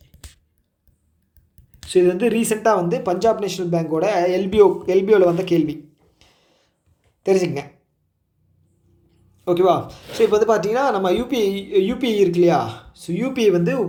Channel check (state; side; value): identical; both; correlation 1.00